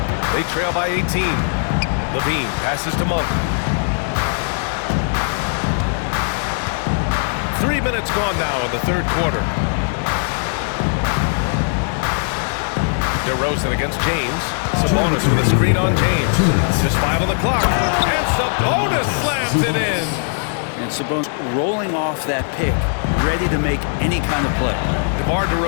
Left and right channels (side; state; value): right; silent; digital silence